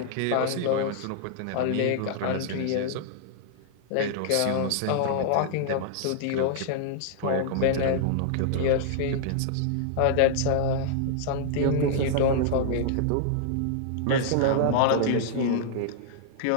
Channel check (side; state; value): both; different; correlation -0.01